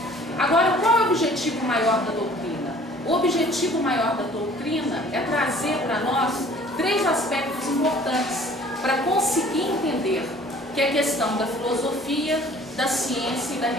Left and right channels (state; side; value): normal; both; correlation 0.52